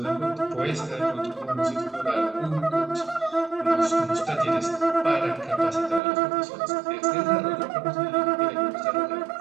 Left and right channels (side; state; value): left; drops out; at 6.0 s